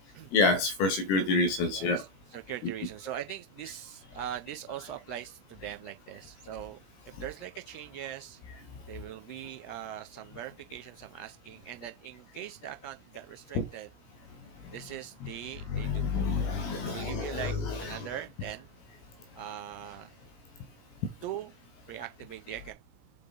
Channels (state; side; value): late; right; 17 ms